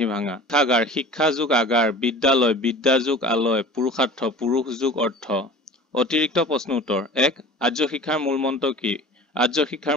ভাঙা। শিক্ষাগাৰ, শিক্ষা যোগ আগাৰ, বিদ্যালয়, বিদ্যা যোগ আলয়, পুৰুষাৰ্থ, পুৰুষ যোগ অৰ্থ। অতিৰিক্ত প্ৰশ্ন উত্তৰ। 1. আৰ্য শিক্ষাৰ মূল মন্ত্ৰ কি? আৰ্য শিক্ষাৰ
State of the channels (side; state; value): both; normal; correlation 0.40